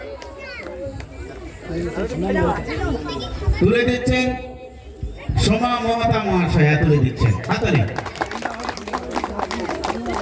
তুলে দিচ্ছেন সোমা মমতা মহাশয়া তুলে দিচ্ছেন হাততালি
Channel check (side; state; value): both; identical; correlation 1.00